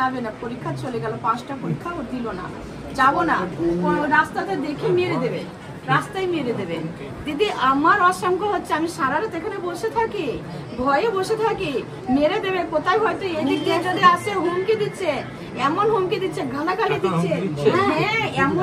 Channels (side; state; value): both; identical; correlation 1.00